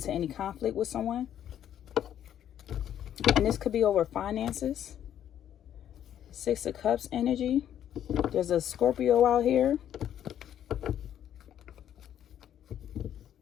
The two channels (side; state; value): right; quieter; 10.4 dB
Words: any conflict with someone. And this could be over finances. 6 of Cups energy. There's a Scorpio out here.